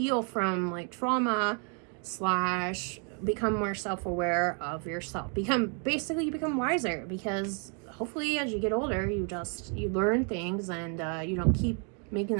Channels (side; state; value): left; quieter; 39.5 dB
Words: from, like, trauma slash become more self-aware of yourself. You become wiser, because hopefully as you get older you learn things, and you don't keep making